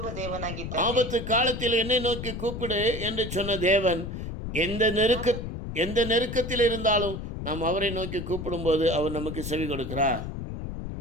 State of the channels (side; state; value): left; noise; rumble, 7 dB below the sound